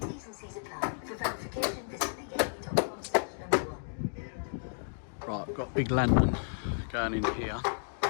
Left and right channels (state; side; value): silent; right; digital silence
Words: Right, I've got a big lantern going in here.